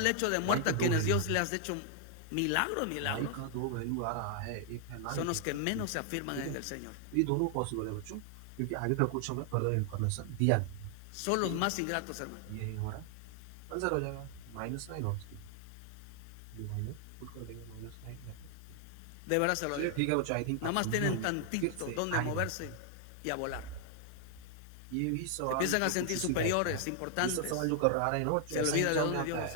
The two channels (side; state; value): both; different; correlation 0.00